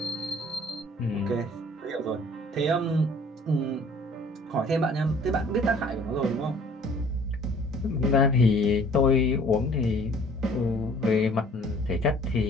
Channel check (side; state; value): both; normal; correlation 0.53